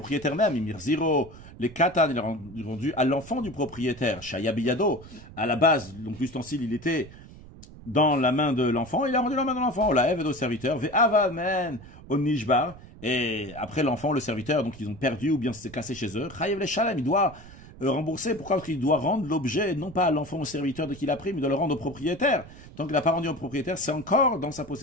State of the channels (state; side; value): noise; right; rumble, 18 dB below the sound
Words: même, les katan, il a rendu à l'enfant du propriétaire, Shayabiyado, à la base, donc l'ustensile, il était dans la main de l'enfant, il a rendu la main de l'enfant, la Ève au serviteur, Ve'avamen au Nishbar, et après l'enfant, le serviteur, donc ils ont perdu ou bien c'est cassé chez eux, Chayev le Shalem, il doit rembourser, pourquoi? Parce qu'il doit rendre l'objet, non pas à l'enfant au serviteur de qui il a pris, mais il doit le rendre au propriétaire. Tant qu'il n'a pas rendu au propriétaire, c'est encore dans sa